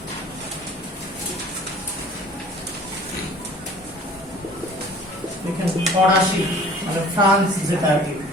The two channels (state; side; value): normal; both; correlation 0.48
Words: ফরাসি, মানে ফ্রান্স, যেটা আর কি